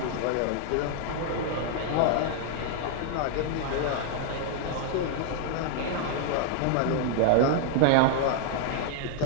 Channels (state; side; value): different; both; correlation -0.01